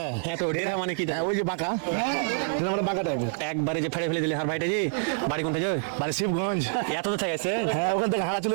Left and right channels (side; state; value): left; silent; 60 dB below the other